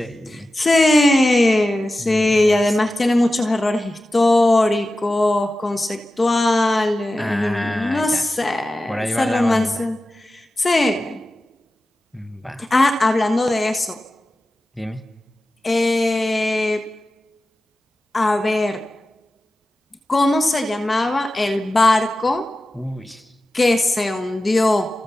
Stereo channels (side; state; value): both; normal; correlation 0.94